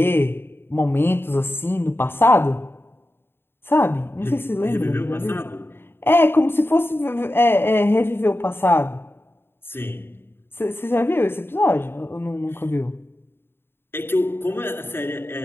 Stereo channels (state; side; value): late; right; 0.11 ms